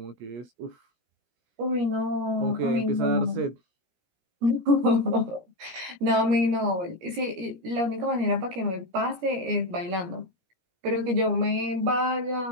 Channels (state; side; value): late; left; 17 ms